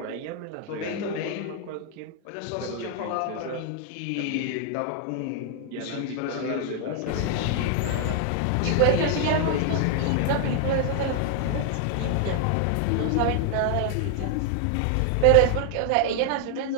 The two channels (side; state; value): both; different; correlation 0.00